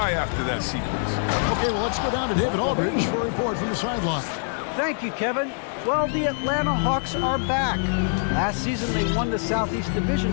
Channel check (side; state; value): right; silent; digital silence